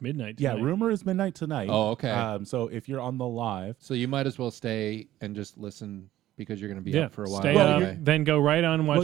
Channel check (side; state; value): left; quieter; 14.0 dB